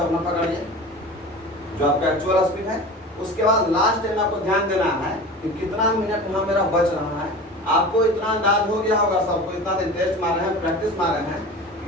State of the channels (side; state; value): both; normal; correlation 0.35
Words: अपना पकड़िए जो आपका एक्चुअल स्पीड है। उसके बाद लास्ट टाइम आपको ध्यान देना है कि कितना मिनट यहाँ मेरा बच रहा है। आपको इतना अंदाज हो गया होगा, सबको इतना दिन टेस्ट मार रहे हैं, प्रैक्टिस मार रहे हैं